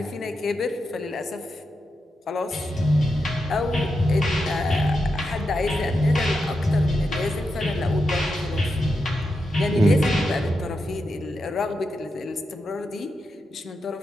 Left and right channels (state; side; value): normal; both; correlation 0.87